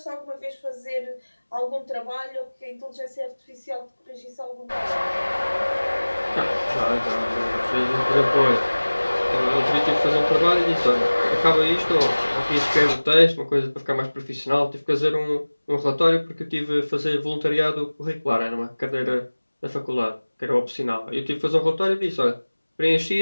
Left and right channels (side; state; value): both; inverted; correlation -1.00